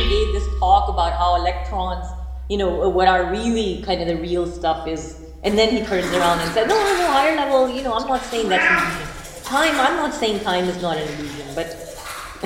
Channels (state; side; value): identical; both; correlation 1.00